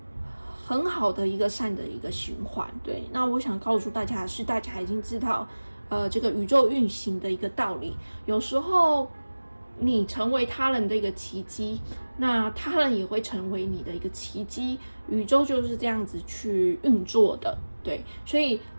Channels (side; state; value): both; inverted; correlation -1.00